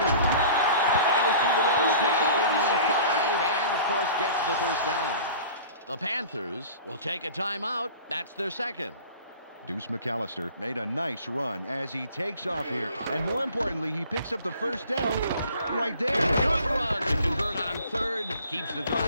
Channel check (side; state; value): both; inverted; correlation -0.45